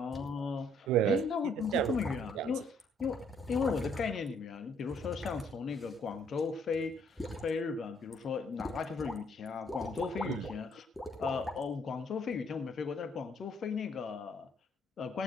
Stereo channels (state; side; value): normal; both; correlation 0.65